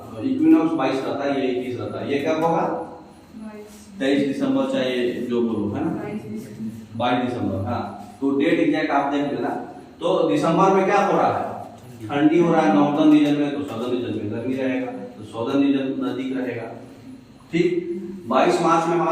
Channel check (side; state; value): both; identical; correlation 1.00